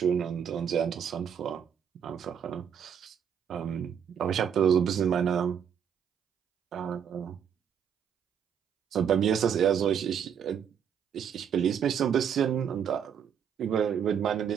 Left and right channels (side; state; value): left; quieter; 8.1 dB